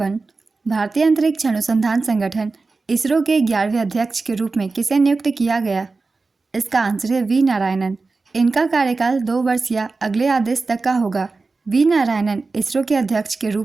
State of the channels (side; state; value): left; quieter; 3.9 dB